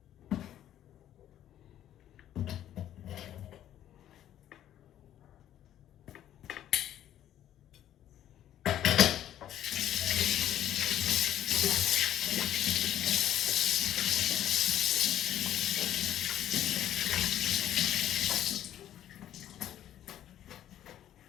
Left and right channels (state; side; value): quieter; right; 11.7 dB